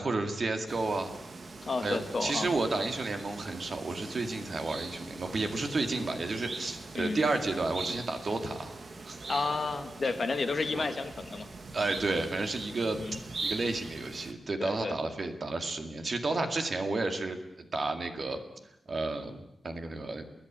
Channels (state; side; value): normal; both; correlation 0.90